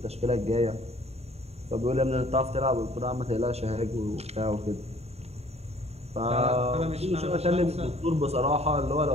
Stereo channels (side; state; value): left; late; 0.30 ms